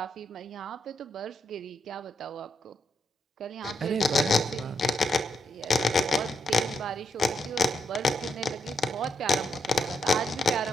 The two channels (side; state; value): both; normal; correlation 0.80